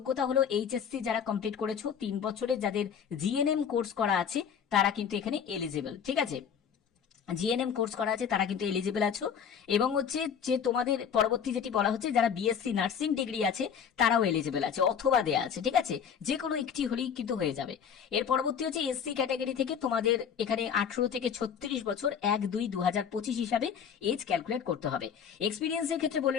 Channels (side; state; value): right; quieter; 7.6 dB